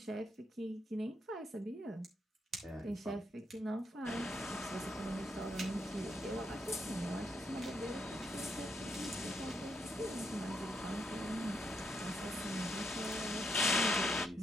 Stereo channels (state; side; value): normal; both; correlation 0.79